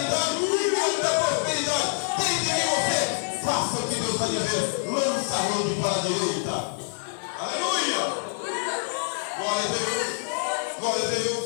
muita prosperidade. Tem que vir você. Faça o que Deus está dizendo. Lança a rede para a direita. Aleluia. Glória a Deus. Glória a Deus.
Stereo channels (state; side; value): silent; right; digital silence